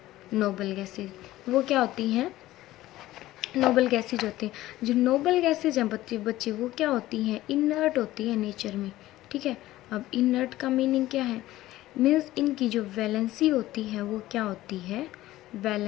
नोबल गैसेज। वो क्या होती हैं, नोबल गैसेज होती हैं। जो नोबल गैसेज हैं बच्चे वो क्या होती हैं, इनर्ट होती है नेचर में, ठीक है। अब इनर्ट का मीनिंग क्या है, मीन्स इनकी जो वैलेंसी होती है वो क्या होती है,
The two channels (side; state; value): right; quieter; 15.9 dB